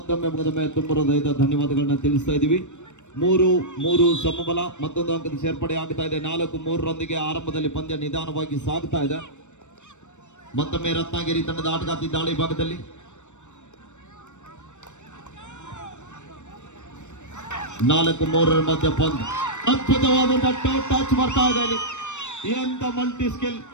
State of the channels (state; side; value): late; right; 0.84 ms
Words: ತುಂಬ ಹೃದಯದ ಧನ್ಯವಾದಗಳನ್ನ ತಿಳಿಸ್ತಾ ಇದ್ದೀವಿ. 3-3 ಸಮಬಲ. ಮತ್ತೊಂದು ಅಂಕದ ಸೇರ್ಪಡೆ ಆಗ್ತಾ ಇದೆ. 4-3 ಆರಂಭದಲ್ಲಿ ಪಂದ್ಯ ನಿಧಾನವಾಗಿ ಸಾಗ್ತಾ ಇದೆ. ಮತ್ತೊಮ್ಮೆ ರತ್ನಗಿರಿ ತಂಡದ ಆಟಗಾರ್ತಿ ದಾಳಿ ಭಾಗದಲ್ಲಿ ನಾಲ್ಕು 3 ಮಧ್ಯ ಪಂದ್ಯ. ಅದ್ಭುತವಾದಂತಹ ಟೋ ಟಚ್ ಬರ್ತಾ ಇದೆ ಇಲ್ಲಿ. ಎಂತ ಮಲ್ಟಿ ಸ್ಕಿಲ್